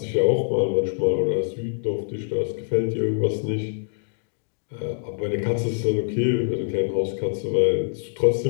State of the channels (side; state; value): right; silent; digital silence